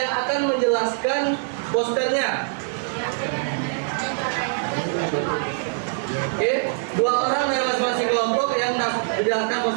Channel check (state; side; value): silent; left; digital silence